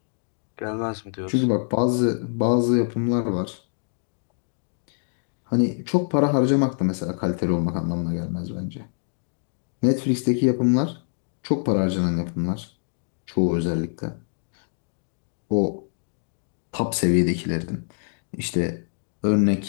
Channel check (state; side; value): silent; right; digital silence